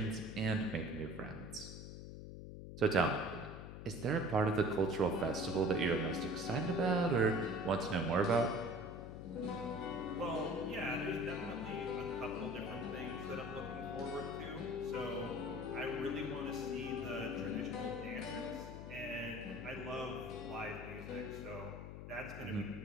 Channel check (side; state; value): left; noise; hum, 10 dB below the sound